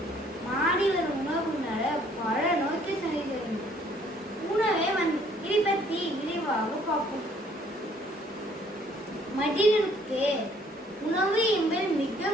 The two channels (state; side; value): normal; both; correlation 0.61